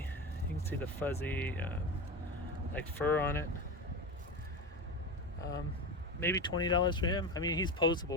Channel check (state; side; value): normal; both; correlation 0.22